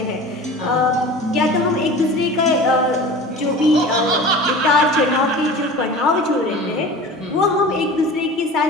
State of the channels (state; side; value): normal; both; correlation 0.37